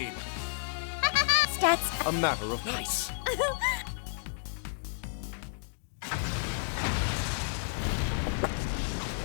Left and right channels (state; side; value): silent; right; digital silence